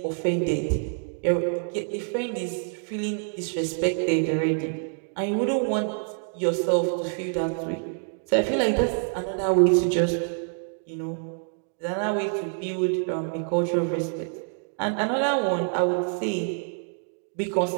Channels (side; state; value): left; silent; digital silence